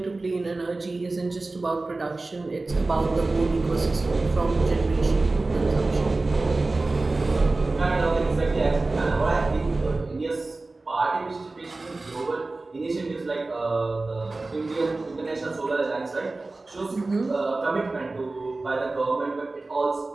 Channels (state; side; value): quieter; left; 3.3 dB